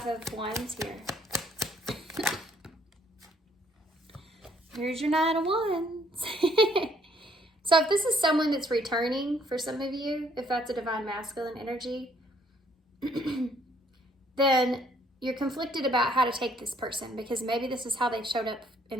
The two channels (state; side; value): normal; both; correlation 0.65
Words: of Wands here? Here's your Nine of Wands. So if this is someone that's returning for some of you, if that's a divine masculine energy, then you're conflicted about how to take this person, because maybe this is how they've showed up